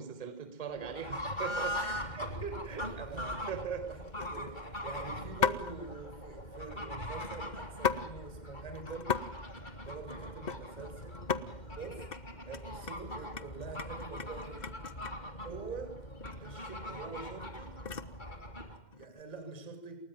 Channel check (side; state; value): right; late; 2.1 ms